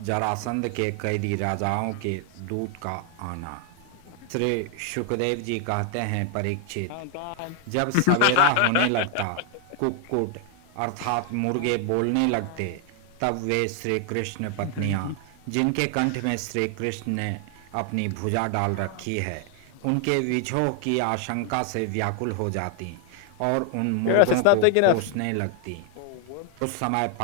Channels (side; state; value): both; different; correlation 0.00